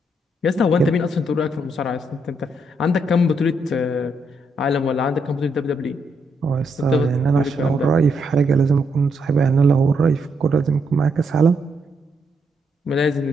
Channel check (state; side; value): normal; both; correlation 0.77